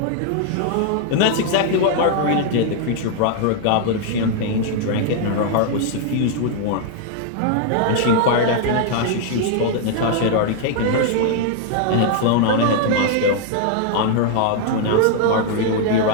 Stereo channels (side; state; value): both; different; correlation 0.00